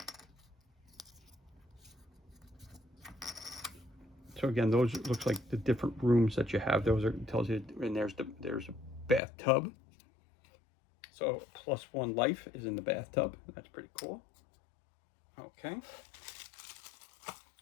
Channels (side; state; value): right; drops out; at 9.2 s